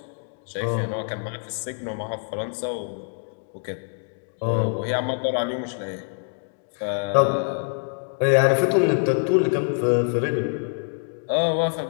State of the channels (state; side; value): silent; right; 60 dB below the other